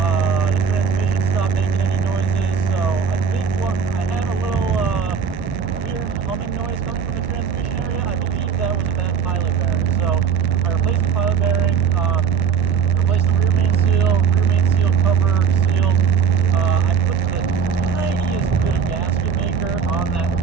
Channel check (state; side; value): quieter; left; 6.8 dB